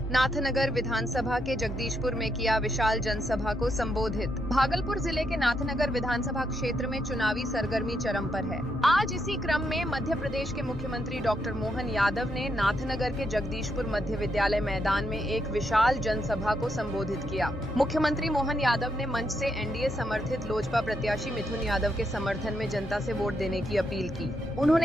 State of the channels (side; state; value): both; normal; correlation 0.79